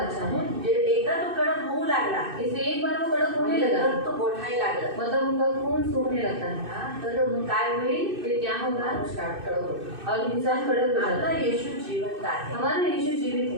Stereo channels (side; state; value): left; late; 2.6 ms